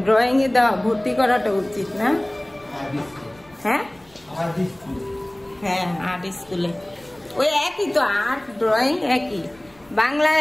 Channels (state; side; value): noise; left; rumble, 29 dB below the sound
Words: ড্রয়িং এ দেওয়া, ভর্তি করাটা উচিত না? হ্যাঁ হ্যাঁ, আর্ট স্কুলে ওই একই তো, আর্ট ড্রয়িং একই। বাংলায়